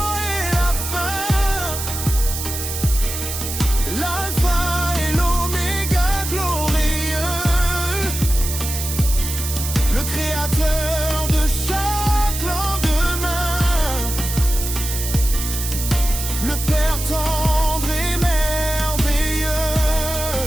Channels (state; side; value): noise; right; hiss, 5 dB below the sound